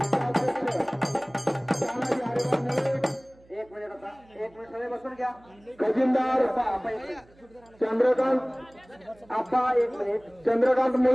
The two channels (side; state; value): right; noise; hum, 29 dB below the sound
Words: तानाजी हरिभाऊ मुळे. 1 मिनिट आता 1 मिनिट सगळे बसून घ्या. खजिनदार चंद्रकांत आप्पा 1 मिनिट. चंद्रकांत